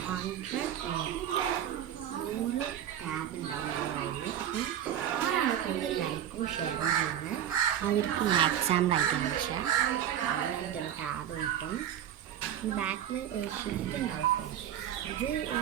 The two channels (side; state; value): left; quieter; 10.2 dB